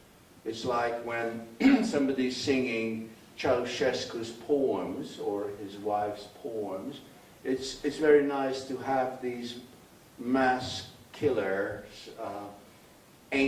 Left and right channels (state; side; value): identical; both; correlation 1.00